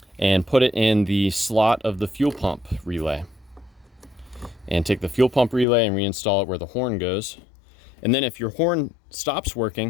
and put it in the slot of the fuel pump relay. And take the fuel pump relay and reinstall it where the horn goes. And then if your horn stops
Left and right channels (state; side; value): drops out; right; at 5.7 s